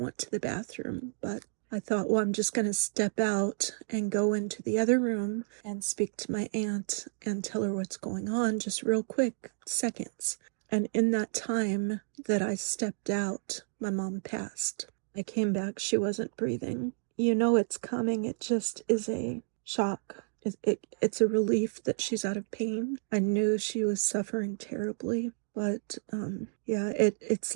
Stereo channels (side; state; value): left; silent; digital silence